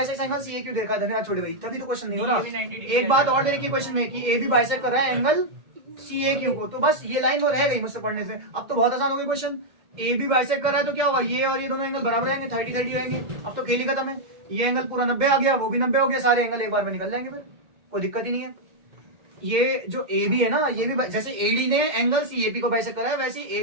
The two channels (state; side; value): late; left; 2.1 ms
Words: angle C A क्यों देखा। धन्यवाद छोटे भाई, तभी तो क्वेश्चन नहीं हो रहा। एक बात और देखिए क्वेश्चन में कि ए बी बाइसेक्ट कर रहा है एंगल सी ए क्यू को, तो बस ये लाइन वो रह गई मुझसे पढ़ने से। अब तो बहुत आसान हो गई क्वेश्चन। ए बी बाइसेक्ट कर रहा है तो क्या होगा, ये और ये दोनों एंगल बराबर आएंगे, 30-30 रहेंगे। अब तो खेल ही खत्म है। ये एंगल पूरा 90 आ गया, वो भी 90 हो गया, सारे एंगल एक बार में निकल जाएंगे, फिर कोई दिक्कत ही नहीं है। ये जो ए बी है ना, ये भी जैसे एडी ने एंगल सी ए पी को बाइसेक्ट करा है, वैसे